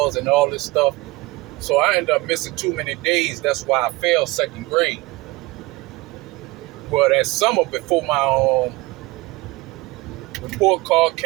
and all this stuff. So I ended up missing too many days. That's why I failed second grade. Well, that summer before my report card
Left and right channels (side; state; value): left; quieter; 21.3 dB